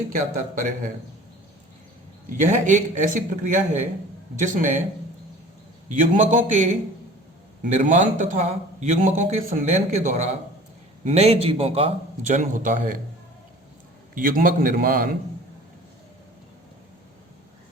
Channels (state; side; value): normal; both; correlation 0.44